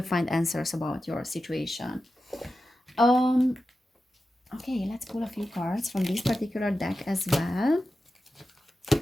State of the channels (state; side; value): normal; both; correlation 0.92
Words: find answers about your situation. Um, okay, let's pull a few cards from this particular deck as well.